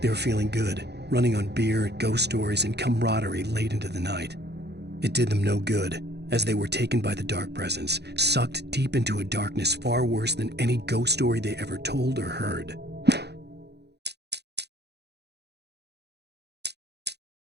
They were feeling good, running on beer, ghost stories, and camaraderie late into the night. It did them no good, as they were taken by the dark presence, sucked deep into a darkness far worse than any ghost story they ever told or heard.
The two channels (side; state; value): left; late; 0.48 ms